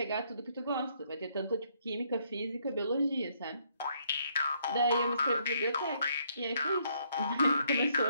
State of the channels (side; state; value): both; inverted; correlation -0.70